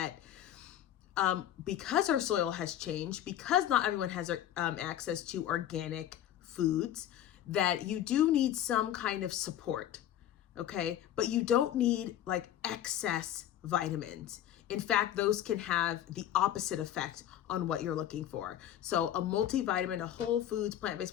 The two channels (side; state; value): right; quieter; 11.4 dB